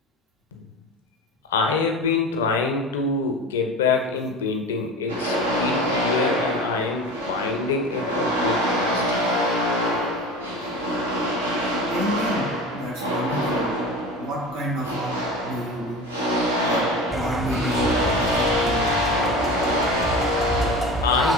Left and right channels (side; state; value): both; normal; correlation 0.31